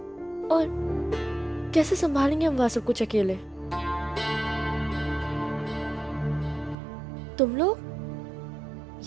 और कैसे संभालेंगे हम वहां सब कुछ अकेले। तुम लोग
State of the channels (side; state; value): left; drops out; at 6.8 s